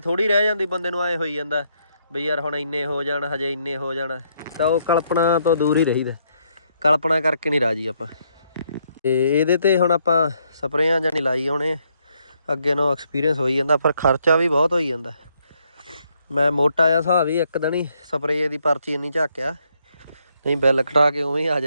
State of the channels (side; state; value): both; inverted; correlation -0.74